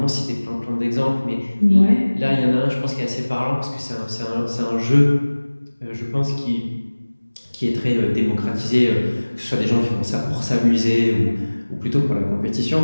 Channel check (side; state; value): both; inverted; correlation -1.00